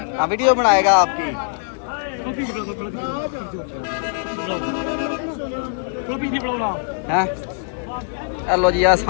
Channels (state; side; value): silent; right; digital silence